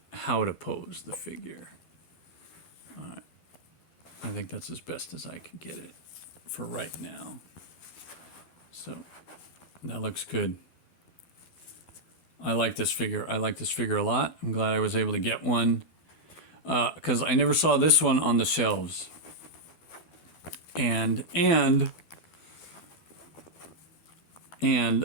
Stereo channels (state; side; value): late; right; 12 ms